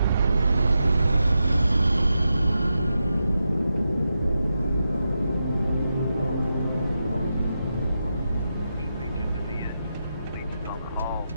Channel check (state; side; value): inverted; both; correlation -0.88